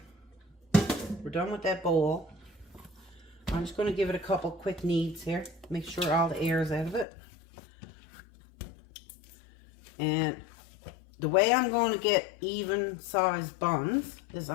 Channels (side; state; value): right; drops out; at 7.1 s